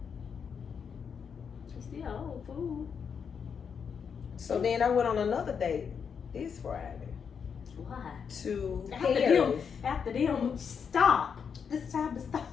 He's still old fool. So then I went on another date this Friday. Why? To After Paris. them, stop. It's time to stop.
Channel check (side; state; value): right; quieter; 6.7 dB